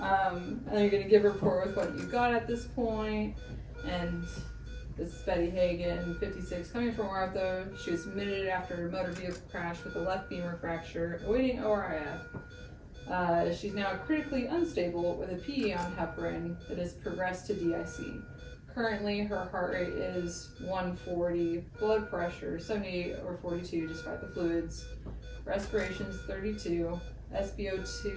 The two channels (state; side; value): identical; both; correlation 1.00